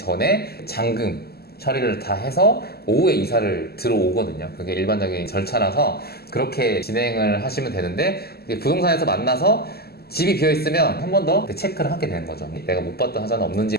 잔금 처리를 다 해서 오후에 이사를 들어오거든요. 그게 일반적인 절차라서 그렇게 진행을 하시면 되는데 부동산에서 만나서 집이 비어있으면 한 번 더 체크를 하게 되는 거죠. 내가 못 봤던 하자는 없는지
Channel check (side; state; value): right; late; 0.46 ms